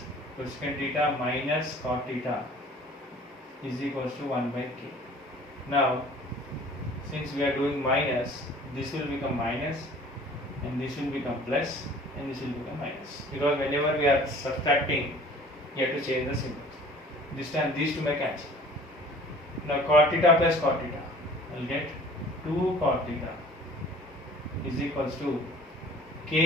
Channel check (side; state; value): both; normal; correlation 0.48